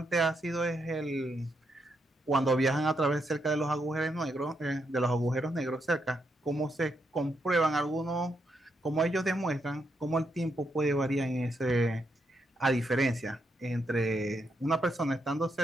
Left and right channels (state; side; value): normal; both; correlation 0.80